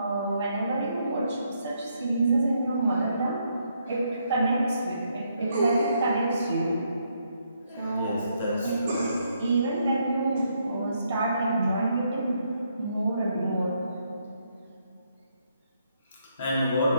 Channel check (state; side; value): inverted; both; correlation -0.75